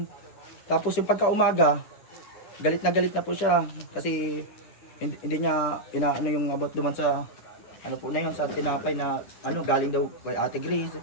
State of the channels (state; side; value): late; right; 9.8 ms